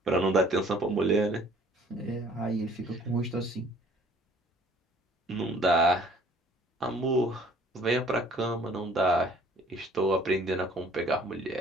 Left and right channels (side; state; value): both; normal; correlation 0.55